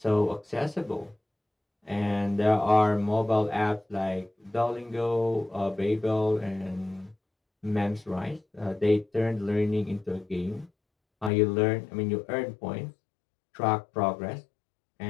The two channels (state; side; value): drops out; right; at 11.3 s